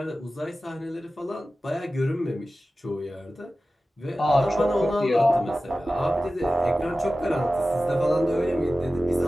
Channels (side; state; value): both; normal; correlation 0.95